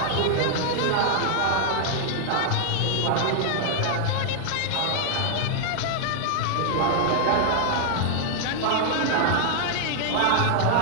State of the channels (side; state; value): both; different; correlation 0.00